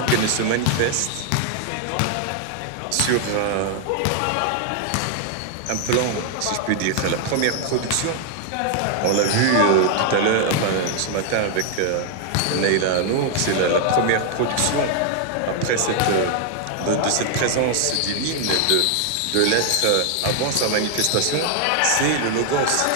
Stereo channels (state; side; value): different; both; correlation 0.00